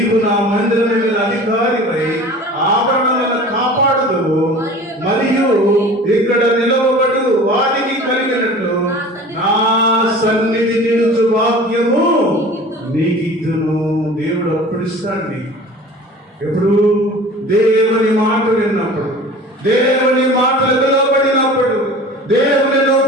నా మందిరం మీద అధికారిపై ఆభరణాలను కాపాడుదువు, మరియు ఇక్కడ నిలవబడు వారికి కలిగినట్లు నా సన్నిధి నిలుచు భాగ్యము నీకిద్దును. దేవుడు అప్పుడు ఇస్తాడు. ఎప్పుడు దేవుని మాట విన్నప్పుడు, దేవుని మాటలు వినబడినప్పుడు, దేవుని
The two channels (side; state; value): both; normal; correlation 0.41